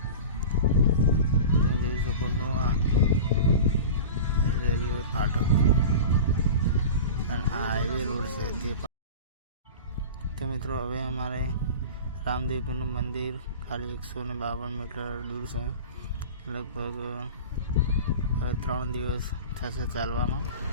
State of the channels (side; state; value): both; inverted; correlation -0.33